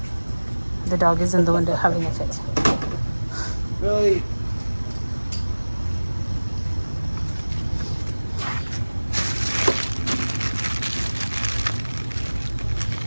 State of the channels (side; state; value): both; inverted; correlation -1.00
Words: The dog is in the window having a fit. Really?